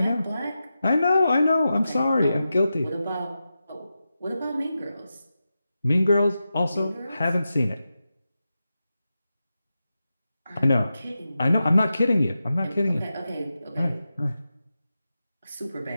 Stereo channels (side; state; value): both; inverted; correlation -0.91